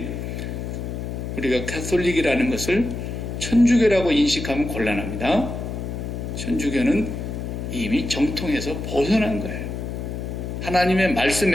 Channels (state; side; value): noise; left; hum, 5 dB below the sound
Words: 우리가 캐톨릭이라는 것을 천주교라고 인식하면 곤란합니다. 천주교는 이미 정통에서 벗어난 거예요. 하나님의